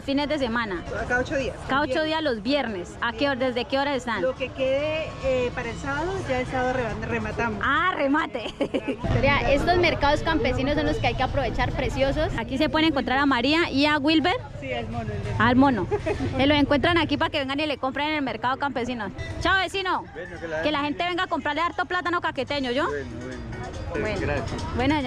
fines de semana. Cada 8 días. Cada 8 días los viernes. ¿A qué hora, desde qué hora están? Lo que quede para el sábado, ya el sábado rematamos. Ah, remate. Vea, estos mercados campesinos son los que hay que aprovechar, preciosos. Aquí se pueden encontrar a María y a Wilber. Sí, al mono. Al mono. Se lo encuentran aquí para que vengan y le compren en el mercado campesino. Chao, vecino. Bueno, que la gente venga a comprarle harto plátano caqueteño, ¿yo? Bueno. Bueno, Gracias. bueno,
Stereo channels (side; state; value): both; identical; correlation 1.00